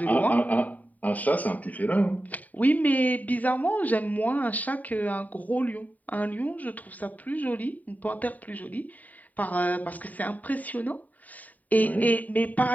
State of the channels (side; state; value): right; late; 0.075 ms